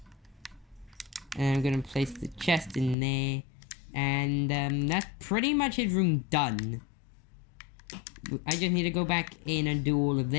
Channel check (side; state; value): right; drops out; at 3.0 s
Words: And I'm gonna place the chest in there, and that's pretty much his room done. I just need to go back in and do all of